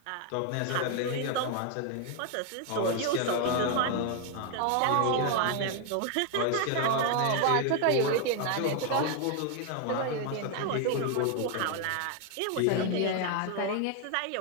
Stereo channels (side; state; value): both; different; correlation 0.00